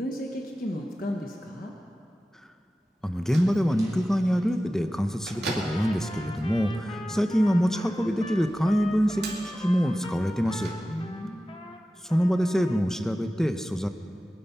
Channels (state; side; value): normal; both; correlation 0.95